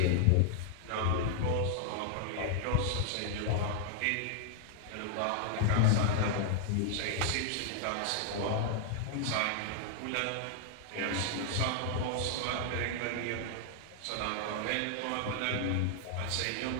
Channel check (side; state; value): both; different; correlation 0.00